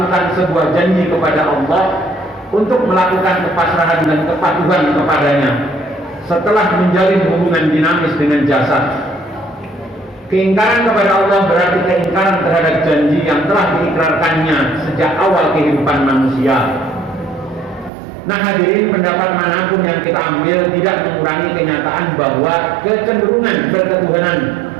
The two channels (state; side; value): drops out; left; at 17.9 s